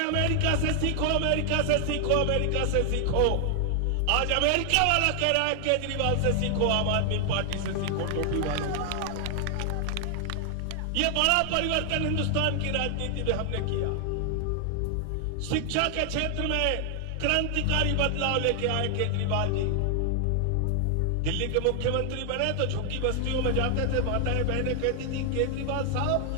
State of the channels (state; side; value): different; both; correlation 0.00